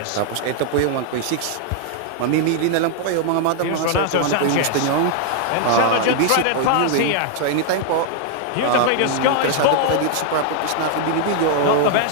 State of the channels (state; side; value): different; both; correlation 0.00